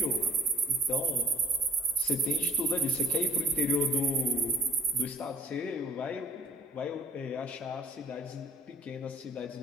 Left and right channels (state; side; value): normal; both; correlation 0.56